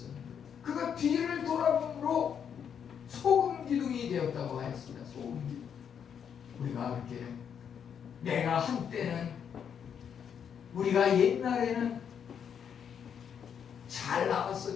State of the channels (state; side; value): quieter; right; 7.9 dB